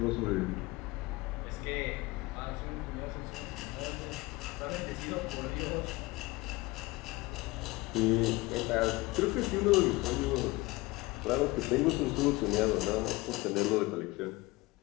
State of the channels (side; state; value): right; quieter; 21.7 dB